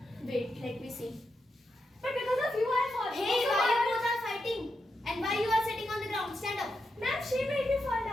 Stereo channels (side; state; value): both; normal; correlation 0.86